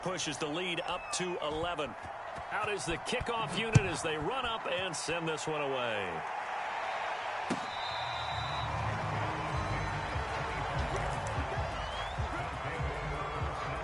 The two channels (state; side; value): identical; both; correlation 1.00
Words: pushes the lead up to 11. Out is the kickoff unit as they run up and send this one away.